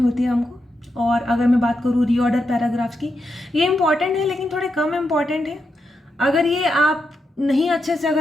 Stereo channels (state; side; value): normal; both; correlation 0.85